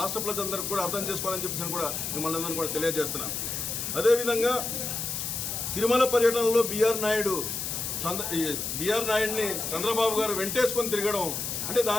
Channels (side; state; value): left; noise; hiss, 3 dB below the sound